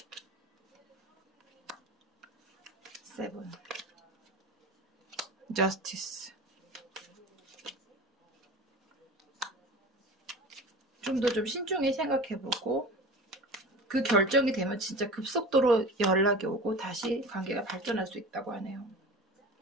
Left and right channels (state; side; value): normal; both; correlation 0.36